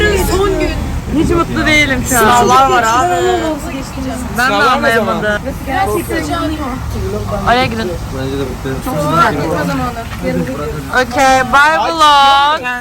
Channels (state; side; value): identical; both; correlation 1.00